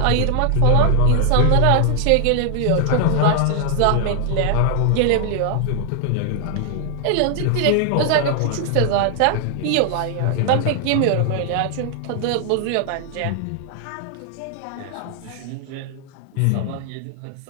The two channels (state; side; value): different; both; correlation 0.00